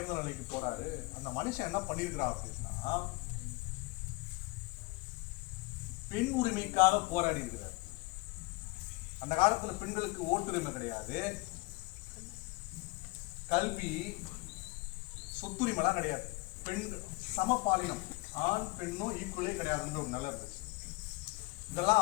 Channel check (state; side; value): quieter; right; 23.7 dB